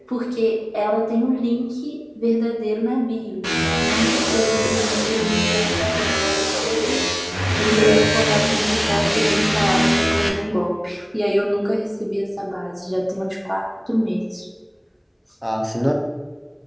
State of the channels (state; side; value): identical; both; correlation 1.00